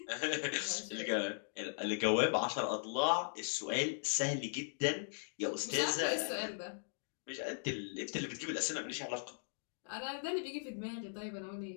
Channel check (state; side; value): silent; right; digital silence